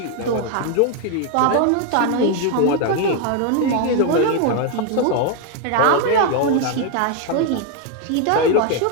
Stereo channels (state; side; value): different; both; correlation 0.01